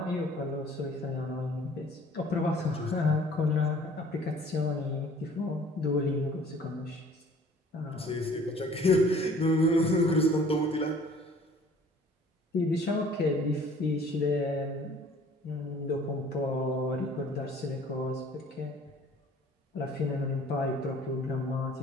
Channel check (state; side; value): normal; both; correlation 0.52